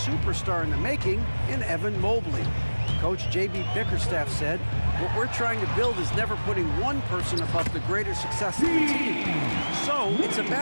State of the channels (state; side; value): inverted; both; correlation -1.00